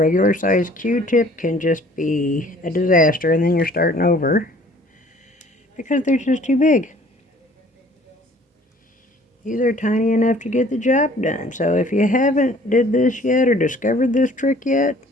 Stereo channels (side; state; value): both; normal; correlation 0.54